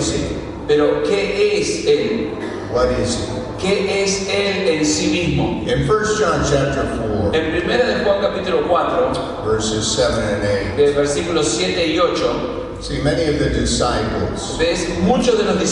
He? Pero ¿qué es Él? What is He? ¿Qué es Él en sí mismo? In 1 John chapter 4, En primera de Juan capítulo 4, verses 7 and 8, versículos 7 y 8, see, many of the disciples, ves muchos de los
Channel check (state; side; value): identical; both; correlation 1.00